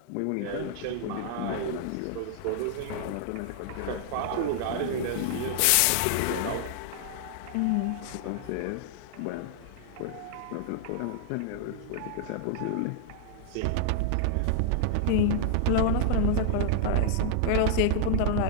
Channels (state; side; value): different; both; correlation -0.01